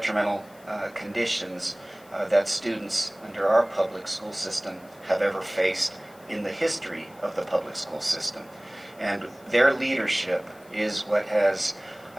conditions that students under our public school system have ever faced in the history of the public school system. And their leadership is what has,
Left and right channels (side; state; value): left; noise; hiss, 27 dB below the sound